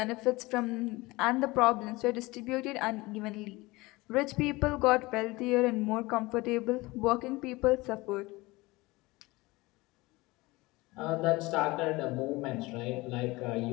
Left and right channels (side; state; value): right; quieter; 21.7 dB